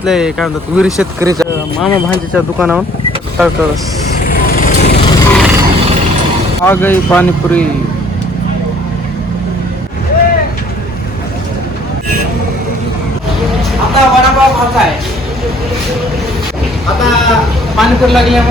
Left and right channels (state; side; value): normal; both; correlation 0.57